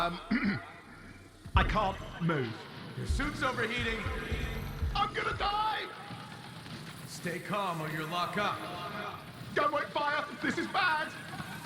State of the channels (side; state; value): both; identical; correlation 1.00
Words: can't move. Your suit's overheating. I'm gonna die! Stay calm or you'll lock up. Don't wait fire! This is bad!